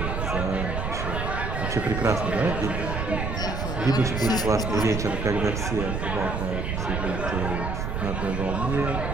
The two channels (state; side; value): noise; right; rumble, 2 dB below the sound